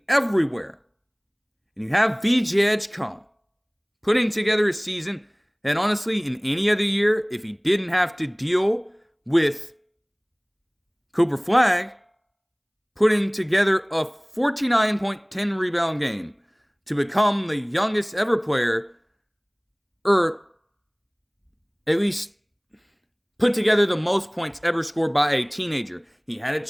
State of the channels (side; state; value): both; identical; correlation 1.00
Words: everywhere. And you have VJ Edgecombe putting together a season that honestly, in any other year, if he didn't have to deal with Cooper Flagg, putting together a 49.10 rebound game to become the youngest ever player, or at least put together the most points ever scored by a teenager. He had a